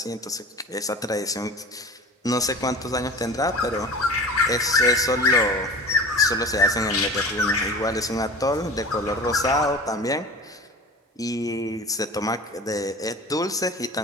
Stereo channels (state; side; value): normal; both; correlation 0.37